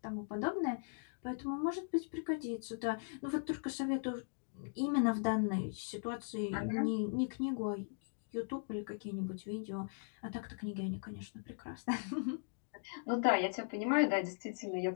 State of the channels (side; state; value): right; silent; digital silence